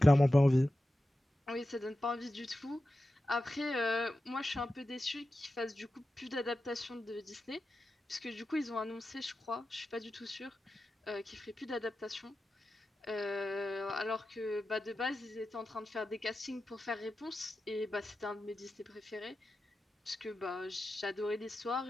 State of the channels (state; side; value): normal; both; correlation 0.92